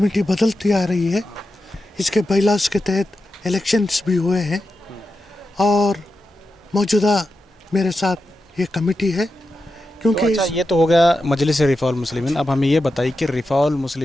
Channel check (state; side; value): normal; both; correlation 0.89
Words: बदलती आ रही है। इसके बाइलास के तहत इलेक्शंस भी हुए हैं और मौजूदा मेरे साथ ये कमेटी है, क्योंकि तो अच्छा, ये तो हो गया मजलिस रिफ़ा उल मुस्लिमीन। अब हमें ये बताइए कि रिफ़ा उल